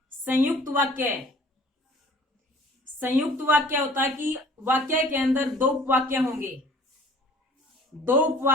संयुक्त वाक्य, संयुक्त वाक्य होता है कि वाक्य के अंदर 2 उपवाक्य होंगे, 2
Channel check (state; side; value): normal; both; correlation 0.50